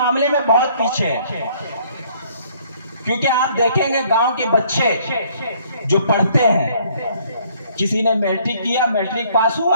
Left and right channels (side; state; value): both; inverted; correlation -0.62